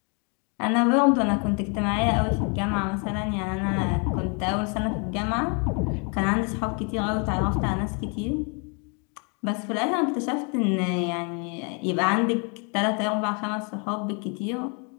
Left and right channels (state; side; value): quieter; right; 35.7 dB